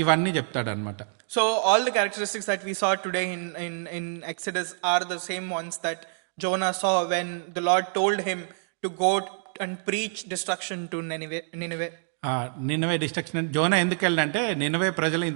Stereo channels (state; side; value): silent; left; digital silence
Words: ఇవన్నీ చెప్తాడు అనమాట. So all the characteristics that we saw today in Exodus are the same ones that Jonah saw when the Lord told him to go and preach destruction to Nineveh. Nineveh destruction అంటే Jonah ఎందుకు వెళ్ళంటే నినవే ప్రజలు